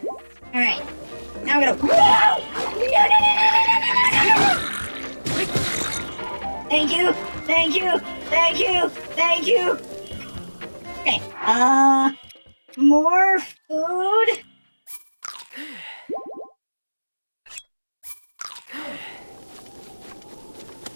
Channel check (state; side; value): inverted; both; correlation -1.00